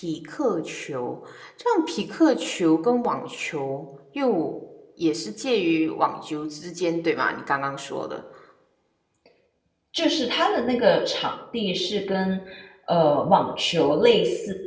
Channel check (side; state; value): both; identical; correlation 1.00